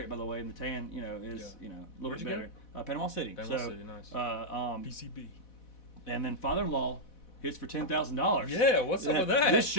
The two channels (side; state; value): right; late; 4.1 ms